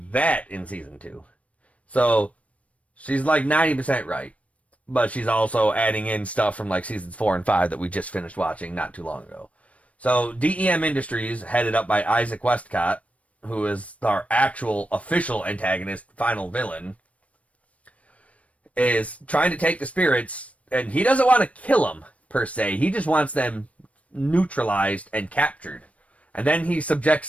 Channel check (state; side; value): late; right; 0.065 ms